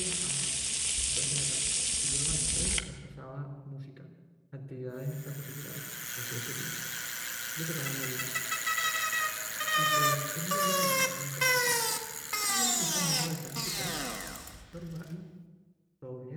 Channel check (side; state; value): both; identical; correlation 1.00